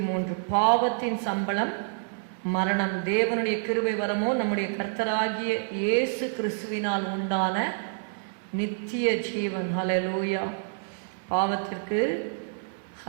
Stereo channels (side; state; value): left; silent; digital silence